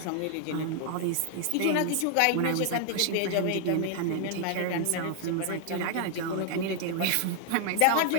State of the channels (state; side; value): different; both; correlation 0.00